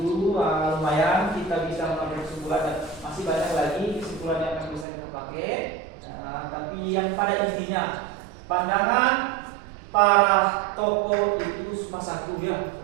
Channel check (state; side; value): drops out; left; at 4.9 s